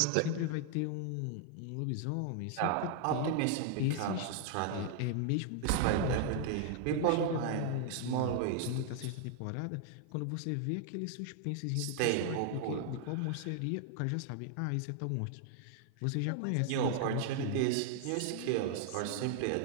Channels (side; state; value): both; different; correlation 0.00